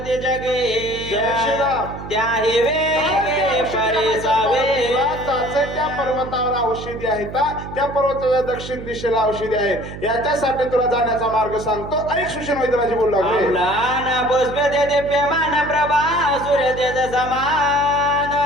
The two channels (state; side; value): noise; right; hum, 11 dB below the sound